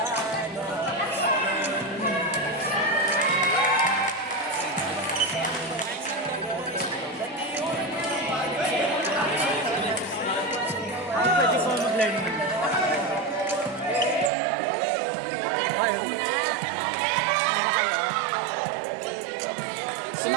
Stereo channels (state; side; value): drops out; left; at 14.3 s